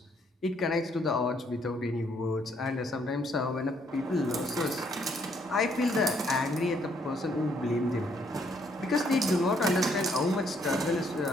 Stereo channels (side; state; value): both; normal; correlation 0.69